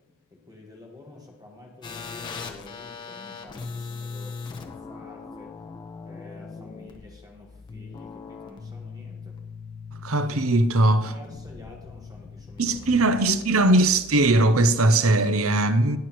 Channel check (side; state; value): both; normal; correlation 0.52